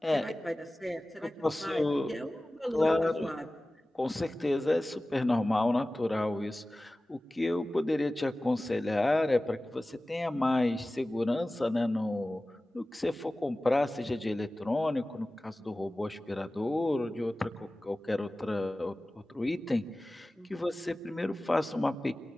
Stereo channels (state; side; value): normal; both; correlation 0.97